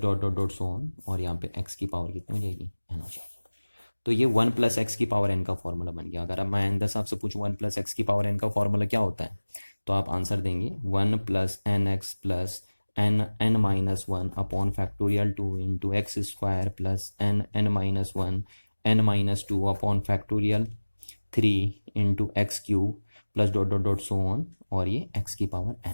dot dot so on, और यहाँ पे x की पावर कितनी हो जाएगी, n हो जाएगी। तो ये 1 प्लस एक्स की पावर n का फॉर्मूला बन गया। अगर अब मैं आइंदा साहब से पूछूं 1 प्लस एक्स की पावर n का फॉर्मूला क्या होता है, तो आप आंसर देंगे 1 plus N X plus n minus one upon factorial 2 into X square plus n minus one n minus to upon factorial 3 into X cube plus dot dot dot so on, और ये x की पावर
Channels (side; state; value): both; inverted; correlation -1.00